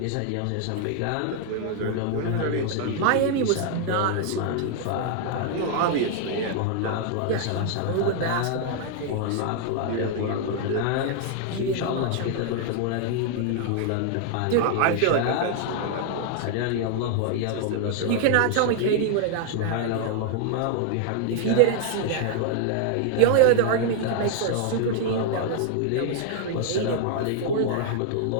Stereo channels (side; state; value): both; different; correlation 0.00